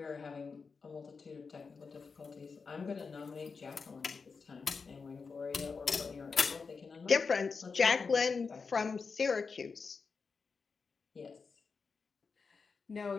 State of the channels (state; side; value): quieter; right; 5.0 dB